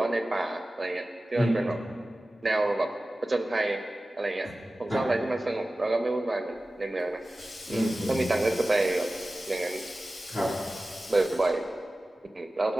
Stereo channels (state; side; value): normal; both; correlation 0.96